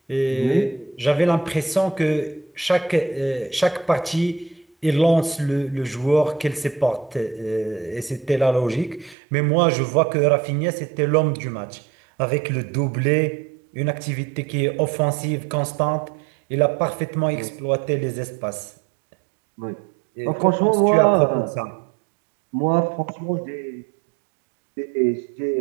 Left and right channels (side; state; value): left; drops out; at 9.2 s